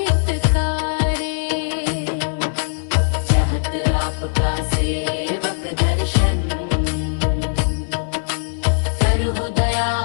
चाहत आपका सेवक दर्शन, करहु दया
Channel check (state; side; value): silent; right; 59 dB below the other